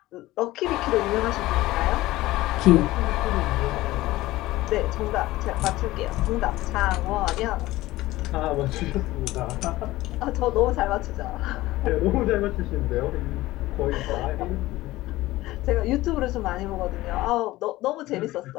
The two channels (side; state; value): right; quieter; 17.6 dB